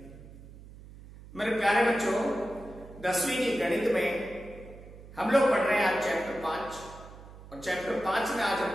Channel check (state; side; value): noise; right; hum, 17 dB below the sound